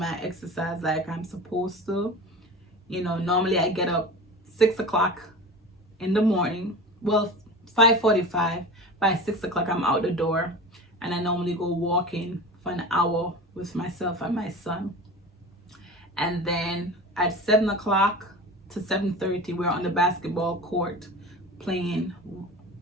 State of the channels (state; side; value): normal; both; correlation 0.33